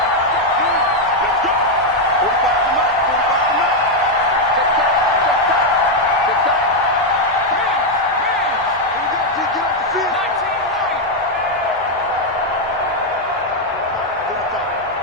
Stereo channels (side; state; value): both; normal; correlation 0.01